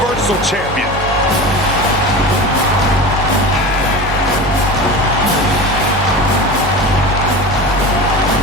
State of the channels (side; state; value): both; normal; correlation 0.31